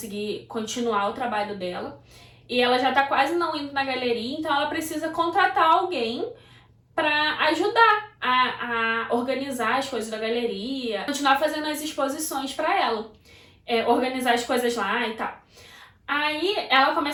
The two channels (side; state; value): both; identical; correlation 1.00